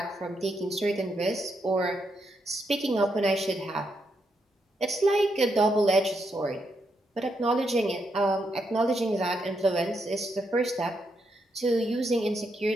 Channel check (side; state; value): both; normal; correlation 0.80